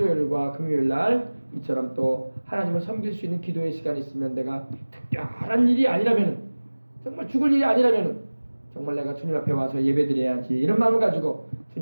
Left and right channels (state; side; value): inverted; both; correlation -1.00